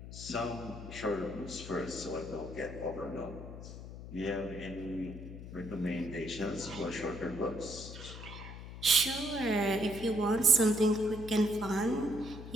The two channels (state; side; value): noise; left; hum, 11 dB below the sound